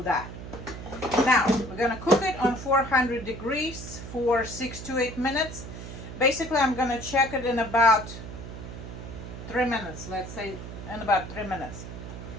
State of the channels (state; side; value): noise; right; hum, 10 dB below the sound